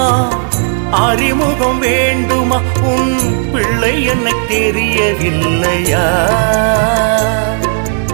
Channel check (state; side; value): silent; left; digital silence